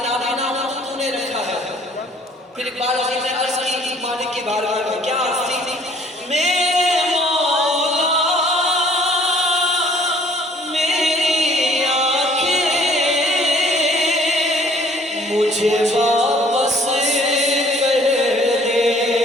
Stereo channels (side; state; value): both; normal; correlation 0.57